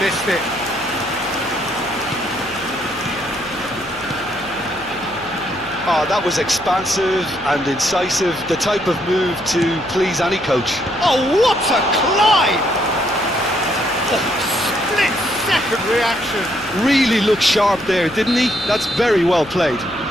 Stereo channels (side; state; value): left; noise; hum, 21 dB below the sound